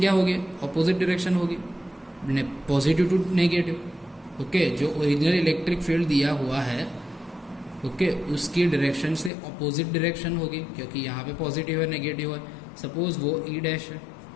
होगी, अपोजिट डायरेक्शन होगी, पॉजिटिव टू नेगेटिव। ओके, जो ओरिजिनल इलेक्ट्रिक फील्ड दिया हुआ है ओके, उसकी डायरेक्शन से अपोजिट डायरेक्शन होगी, क्योंकि यहाँ पे पॉजिटिव है नेगेटिव है। सपोज वो ई डैश है।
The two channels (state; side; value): drops out; right; at 9.3 s